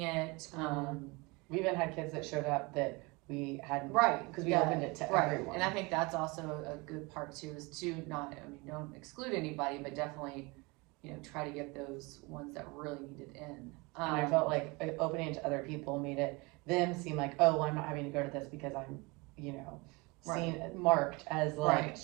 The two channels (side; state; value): left; quieter; 26.3 dB